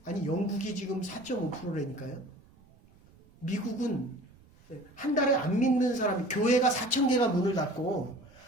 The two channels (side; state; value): right; noise; rumble, 28 dB below the sound